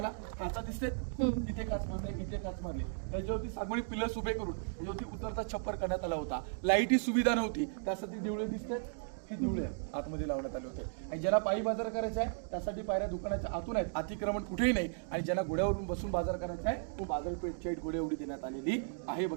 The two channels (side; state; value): left; silent; digital silence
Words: काचा दिसते तिथे काच मारले इथे काच मारले. याच्यावरती सागवणी पिलर्स उभे करून याच्यावरती उतरचा छप्पर करण्यात आला होता. लाईट ही सुविधा नव्हती त्यासाठी दिवळे दिसते ही दिवळे आतमध्ये लावण्यात आले होते. आणि ज्यांना पायी बाजार करायचा आहे त्यासाठी पायऱ्या दुकानाच्या आतून आहेत. अतिक्रमण कुठेही नाही. आणि ज्यांना घोड्यावरून बसून बाजार करायचा आहे तो बाजारपेठची हाईट घोड्या एवढी देण्यात आलेली आहे